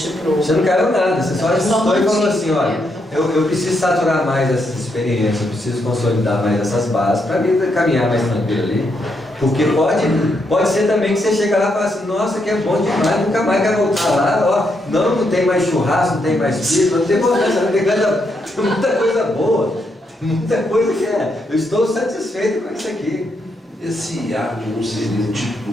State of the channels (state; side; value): normal; both; correlation 0.79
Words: pro... Você não caiu nada, você só ajustou e falou assim, olha, eu preciso saturar mais essas experiências, eu preciso consolidar mais essas bases para mim caminhar mais tranquilo ali. Porque pode ser também que você chega lá e fala assim, nossa, que é bom demais, nunca mais quero voltar lá, ó, não tem mais churrasco, não tem mais pizza, não tem muita coisa boa, muita coisa que eu estou satisfeito com isso aqui. Esse hábito não seria tipo